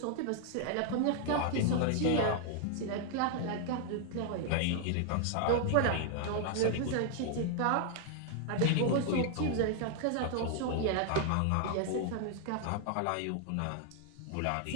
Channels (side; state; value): both; different; correlation 0.00